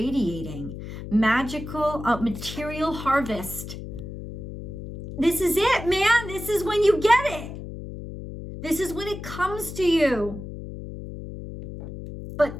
Magical material harvest. This is it, man. This is when you get it. This is when it comes to you. But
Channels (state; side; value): noise; left; hum, 10 dB below the sound